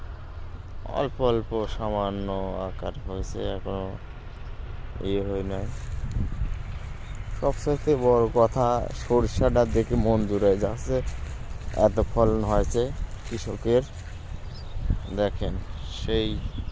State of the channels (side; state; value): both; identical; correlation 1.00